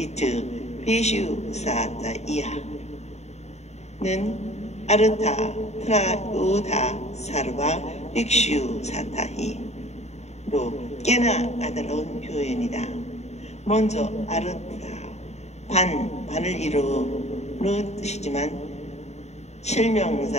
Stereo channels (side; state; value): right; late; 0.32 ms